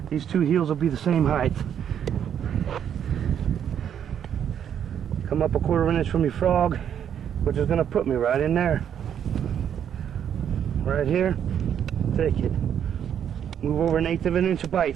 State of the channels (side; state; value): left; quieter; 9.0 dB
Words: These two heels will be the same height. Come up a 1/4 inch from your frog, which is going to put me right in there. Right here. Take it. Move over 1/8 of an inch of